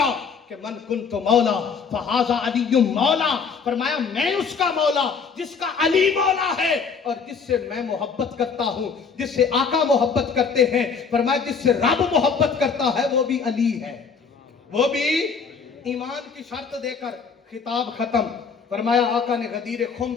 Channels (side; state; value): right; quieter; 5.7 dB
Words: कि मन कुन्तु मौला फहाजा अलीयुम मौला। फरमाया मैं उसका मौला जिसका अली मौला है, और जिससे मैं मोहब्बत करता हूं, जिससे आका मोहब्बत करते हैं। फरमाया जिससे रब मोहब्बत करता है वो भी अली है, वो भी ईमान की शर्त देकर खिताब खत्म। फरमाया आका ने गदीर खुम